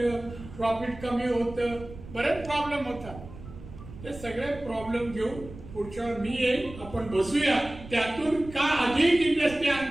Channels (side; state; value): right; noise; rumble, 15 dB below the sound